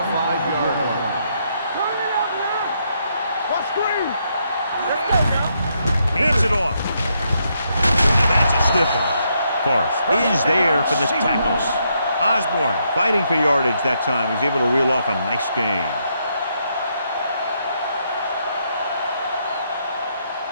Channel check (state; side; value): inverted; both; correlation -0.77